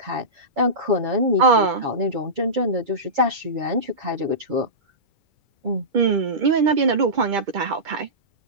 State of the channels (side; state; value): left; late; 2.3 ms